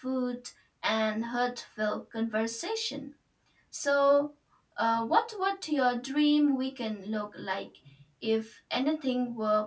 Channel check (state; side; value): identical; both; correlation 1.00